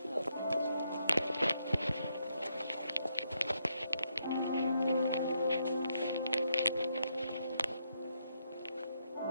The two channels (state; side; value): inverted; both; correlation -0.79